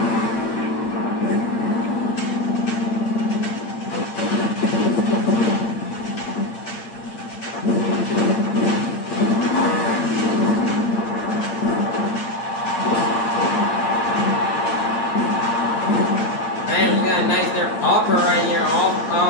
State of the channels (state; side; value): late; right; 8.6 ms